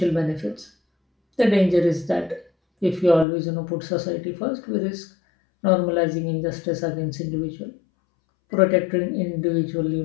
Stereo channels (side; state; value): right; drops out; at 3.2 s